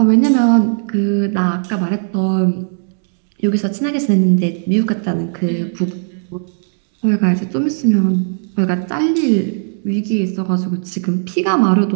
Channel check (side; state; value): left; silent; digital silence